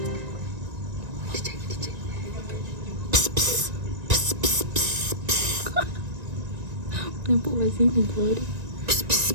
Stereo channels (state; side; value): late; left; 1.9 ms